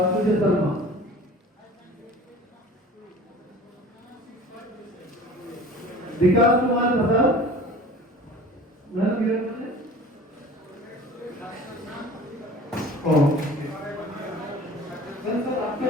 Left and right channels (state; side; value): normal; both; correlation 0.43